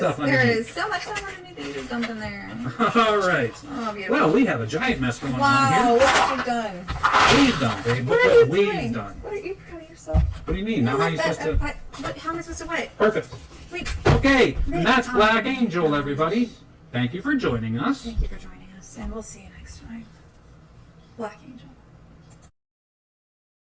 underneath. There is so much stuff underneath that you just dumped in there. All right. Oh, beautiful. Well, we have a giant mess going on Wow, here. look what you've done. We've done, babe. What Look are you what we've doing? done. What are you proud of yourself? What do you mean? Now how are you supposed to... How am I supposed to what? Perfect. Wait. Okay, and that's Black Angel, everybody. Thank you for joining us. Thank you for joining us, and we'll see you next time. Black Angel.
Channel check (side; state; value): both; identical; correlation 1.00